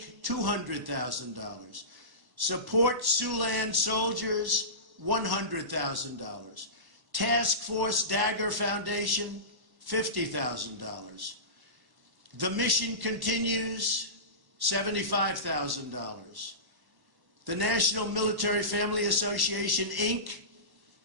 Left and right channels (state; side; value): late; left; 1.1 ms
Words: $200,000. Support Siouxland Soldiers, $100,000. Task Force Dagger Foundation, $50,000. The Mission Continues, $75,000. The National Military Family Association, Inc.,